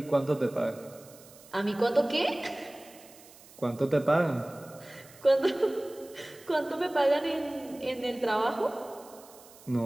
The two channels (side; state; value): right; noise; hiss, 22 dB below the sound